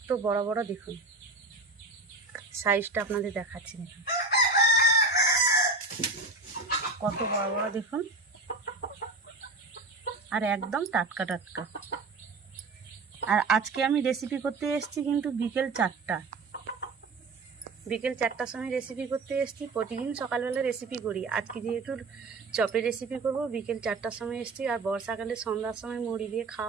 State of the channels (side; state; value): left; quieter; 3.3 dB